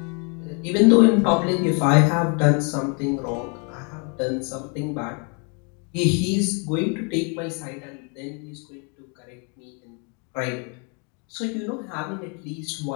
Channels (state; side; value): quieter; right; 36.4 dB